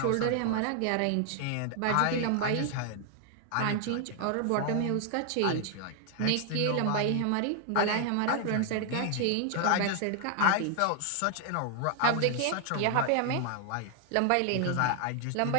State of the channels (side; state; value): both; different; correlation 0.00